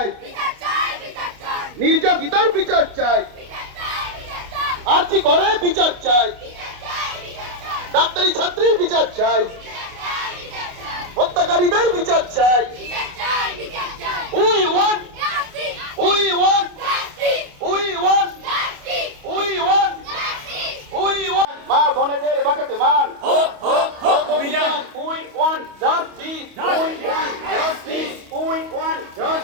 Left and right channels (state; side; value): late; left; 28 ms